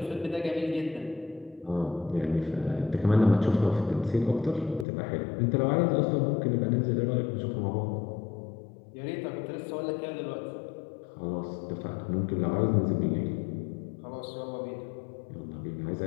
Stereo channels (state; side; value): drops out; right; at 4.9 s